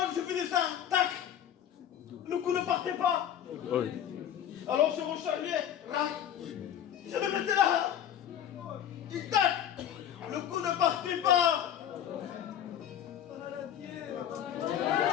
que je faisais ça, tac. Le coup ne partait pas. Oui. Alors je rechargeais, je le mettais là. Et tac. Le coup ne partait pas.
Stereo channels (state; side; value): quieter; right; 10.1 dB